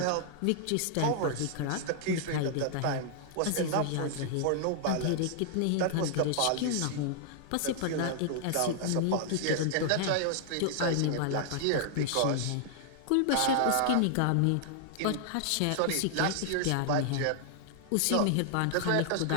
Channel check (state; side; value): different; both; correlation 0.00